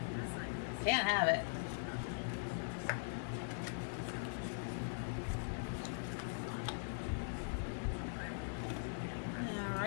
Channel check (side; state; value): right; silent; digital silence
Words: Can't have it.